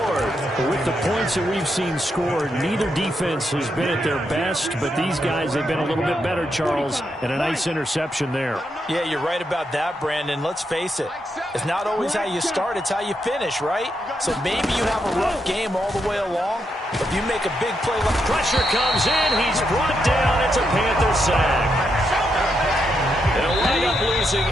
With the points that we've seen scored, neither defense has been at their best, but these guys have been a little bit better, Charles, and a nice interception there. Yeah, you're right about that, Brandon. Let's face it. It's not always how you start, it's how you finish, right? So maybe you have a rough game all the way along, but if you make a big play. Pressure comes in. He's brought down. It's a Panther sack. They'll wind up losing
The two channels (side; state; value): both; normal; correlation 0.81